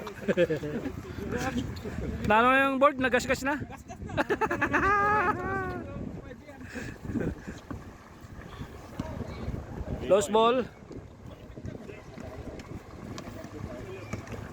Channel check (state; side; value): identical; both; correlation 1.00